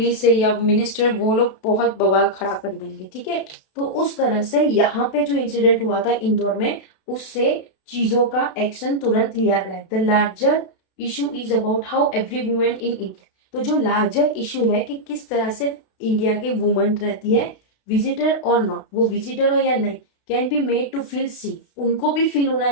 है या मिनिस्टर, वो लोग बहुत बवाल खड़ा कर देंगे, ठीक है। तो उस तरह से यहाँ पे जो इंसिडेंट हुआ था इंदौर में, उससे चीजों का एक्शन तुरंत लिया गया। The larger issue is about how every women in India, तो जो लार्जर इशू है कि किस तरह से इंडिया के वुमन रहती है, विजिटर और नॉट, वो विजिटर हो या नहीं, can be made to feel safe, उनको भी फील होना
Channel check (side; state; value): right; late; 32 ms